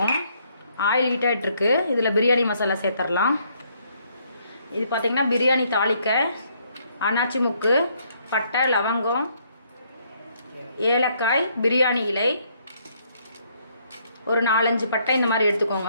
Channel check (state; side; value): inverted; both; correlation -0.69